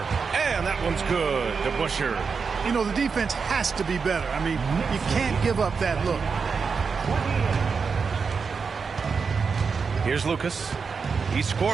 And that one's good. DeBusschere. You know, the defense has to be better. I mean, you can't give up that look. Here's Lucas. He's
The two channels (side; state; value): left; quieter; 5.4 dB